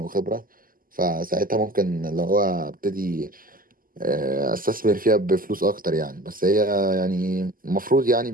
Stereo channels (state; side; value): late; left; 0.41 ms